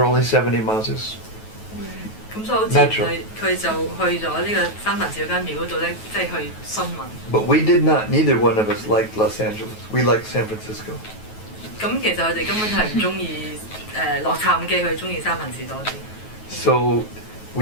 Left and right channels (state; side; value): late; right; 9.3 ms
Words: only 70 miles. 咁所以好自然佢就去咗呢個三藩市嗰間廟嗰度咧，即係去詢問。But we did not. Neither one of us liked Los Angeles. We liked San Francisco. 咁其實佢哋根本係唔中意洛杉磯，佢中意三藩市多啲。So